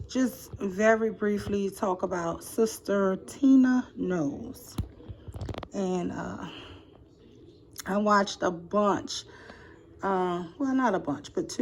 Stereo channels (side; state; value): both; identical; correlation 1.00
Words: just very briefly talk about Sister Tina Knowles. And I watched a bunch, well, not a bunch, but